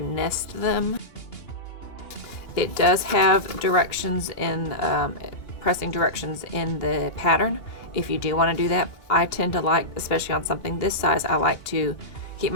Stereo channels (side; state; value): right; late; 2.8 ms